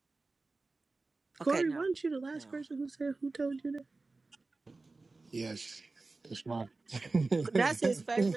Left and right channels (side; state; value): left; quieter; 3.5 dB